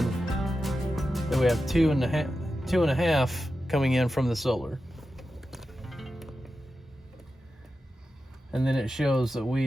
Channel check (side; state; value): both; normal; correlation 0.91